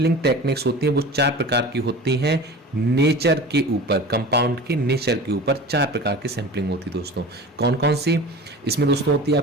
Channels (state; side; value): normal; both; correlation 0.36